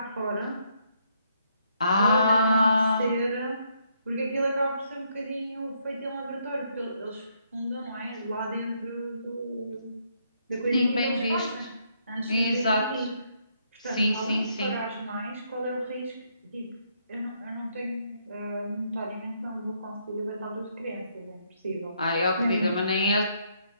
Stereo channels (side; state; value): both; inverted; correlation -0.73